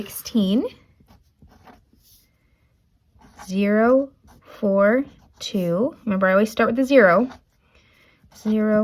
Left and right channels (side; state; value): both; identical; correlation 1.00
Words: 0, 4, 2. Remember, I always start with the 0.